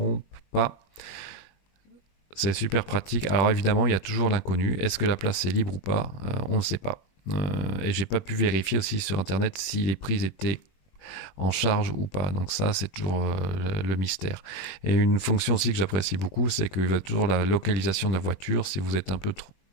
pas. C'est super pratique. Alors évidemment, il y a toujours l'inconnu. Est-ce que la place est libre ou pas? On ne sait pas. Et j'ai pas pu vérifier aussi sur Internet si les prises étaient en charge ou pas. Donc ça, c'est toujours le mystère. Et une fonction aussi que j'apprécie beaucoup, c'est qu'il va toujours la localisation de la voiture. Si vous êtes un peu trop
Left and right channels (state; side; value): late; right; 21 ms